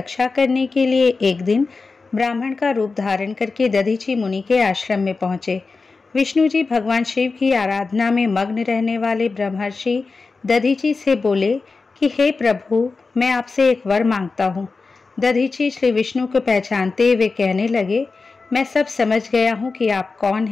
करने के लिए एक दिन ब्राह्मण का रूप धारण करके दधीची मुनि के आश्रम में पहुंचे। विष्णु जी भगवान शिव की आराधना में मग्न रहने वाले ब्रह्मर्षि दधीची से बोले कि हे प्रभु, मैं आपसे एक वर मांगता हूँ। दधीची श्री विष्णु को पहचानते हुए कहने लगे, मैं सब समझ गया हूँ कि आप कौन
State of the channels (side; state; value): right; quieter; 4.1 dB